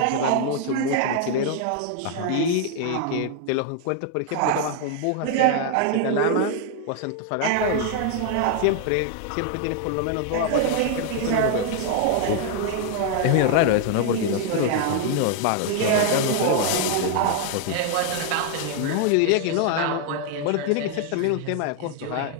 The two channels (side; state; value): both; different; correlation 0.00